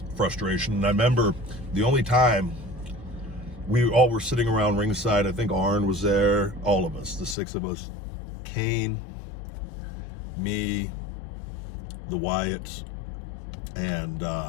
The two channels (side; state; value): right; drops out; at 7.4 s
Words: frustration. And I remember the only time we all were sitting around ringside, I think Arn was there, all of us, the 6 of us, Kane, me, the Wyatts, and